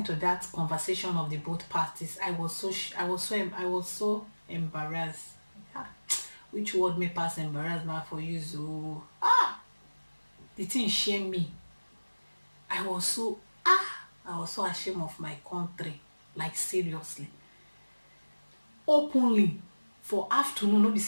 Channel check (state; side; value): inverted; both; correlation -1.00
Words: to that conversation of the both parties, I was so embarrassed. Which word may pass embarrassed now for you? So the thing shame me. I was so ashamed of my country, like seriously. Openly for afternoon, no be